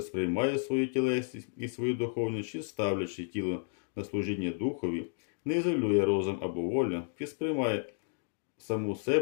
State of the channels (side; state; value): right; silent; digital silence